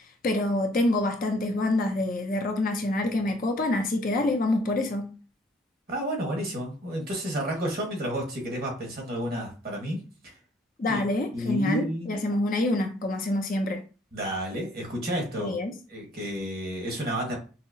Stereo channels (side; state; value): both; normal; correlation 0.60